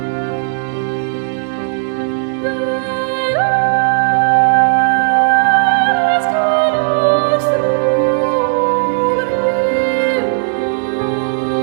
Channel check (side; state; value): left; silent; digital silence